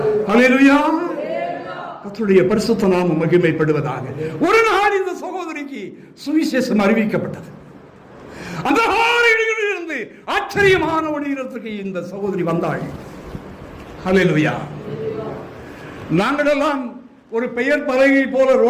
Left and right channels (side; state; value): both; identical; correlation 1.00